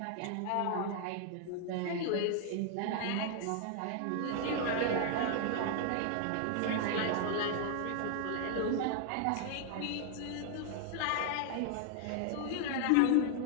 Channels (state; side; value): different; both; correlation 0.00